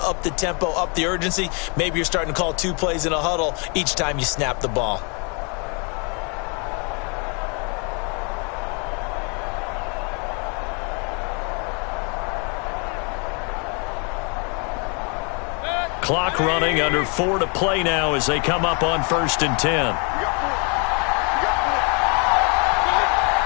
up the tempo, up the urgency. Maybe you're starting to call 2 plays in a huddle each time you snap the ball. Clock running, under 4 to play now as they come up on 1st and 10.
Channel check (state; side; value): quieter; right; 35.0 dB